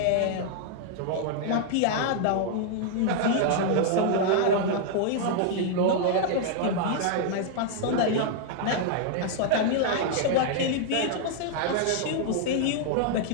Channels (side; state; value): both; different; correlation -0.01